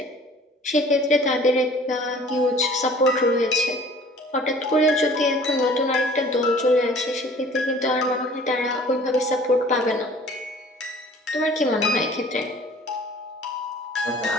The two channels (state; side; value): normal; both; correlation 0.49